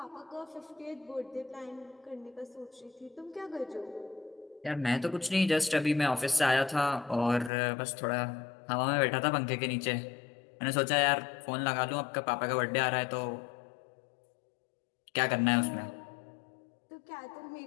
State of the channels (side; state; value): right; drops out; at 7.5 s